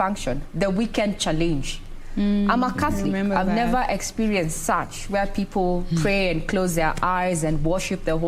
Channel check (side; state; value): both; identical; correlation 1.00